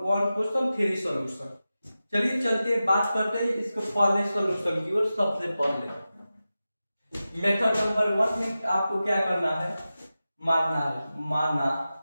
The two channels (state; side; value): inverted; both; correlation -0.94